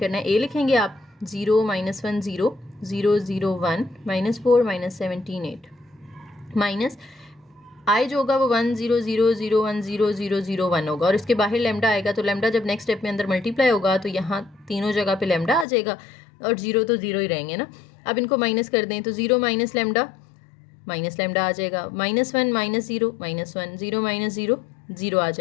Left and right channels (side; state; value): right; drops out; at 15.7 s